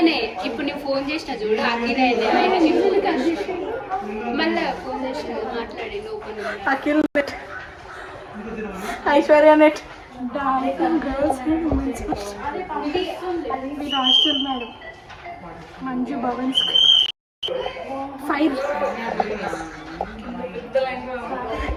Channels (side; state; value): both; identical; correlation 1.00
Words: ఇప్పుడు నేను ఫోన్ చేసిన చూడు అఖిల్ ఆయన మళ్ళీ ఫోన్ చేసిన మాట్లాడి open Akhil net Aishwarya net darling girls and women's మీరు హాస్టల్ మేడం మంజు భవన్స్ 5